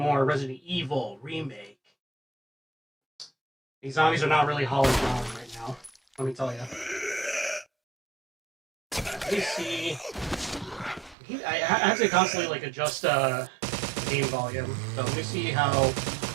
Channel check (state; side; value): drops out; left; at 11.2 s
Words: Resident Evil Remake. These zombies are not really hauling down right now, let me tell you. Let me see. I have to constantly like adjust game volume, so let me see how